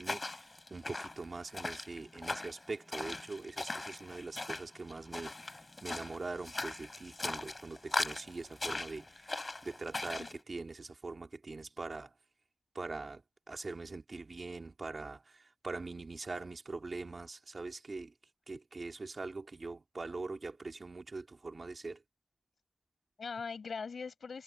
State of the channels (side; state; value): both; normal; correlation 0.95